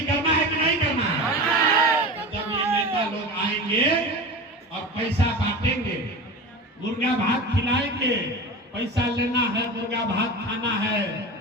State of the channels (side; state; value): both; normal; correlation 0.29